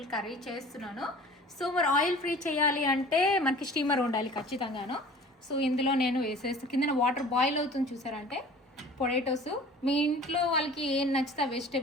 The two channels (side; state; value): both; normal; correlation 0.45